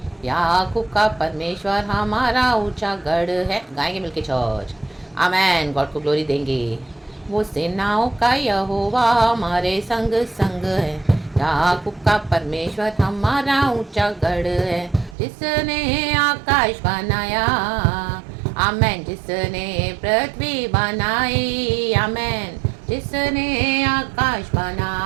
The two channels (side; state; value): left; drops out; at 15.2 s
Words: याकूब का परमेश्वर हमारा ऊंचा गढ़ है। गाएंगे मिलके चर्च, आमेन। गॉड को ग्लोरी देंगे। वो सेनाओं का यहोवा हमारे संग संग है, याकूब का परमेश्वर हमारा ऊंचा गढ़ है। जिसने आकाश बनाया, आमेन। जिसने पृथ्वी बनाई, आमेन। जिसने आकाश